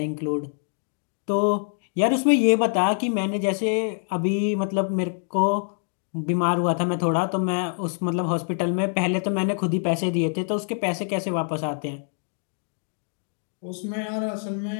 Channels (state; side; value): silent; right; 58 dB below the other